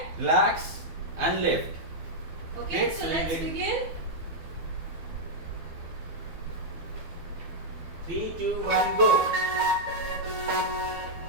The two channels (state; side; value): late; left; 12 ms